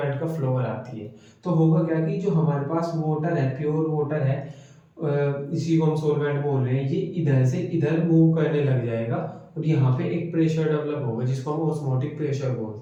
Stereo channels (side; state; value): both; identical; correlation 1.00